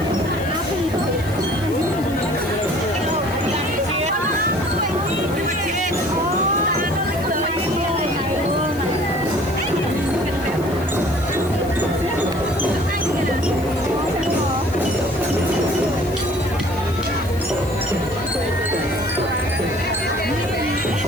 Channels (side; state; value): left; noise; hiss, 18 dB below the sound